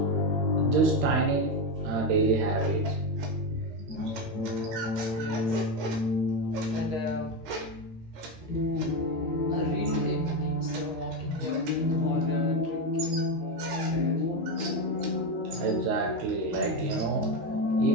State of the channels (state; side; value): late; left; 13 ms